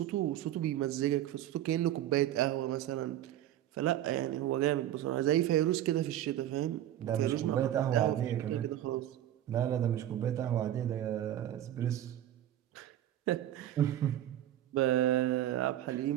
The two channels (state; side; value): quieter; left; 12.4 dB